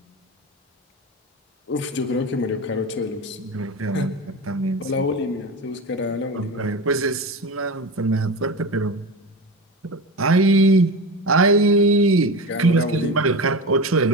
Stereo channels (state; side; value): normal; both; correlation 0.25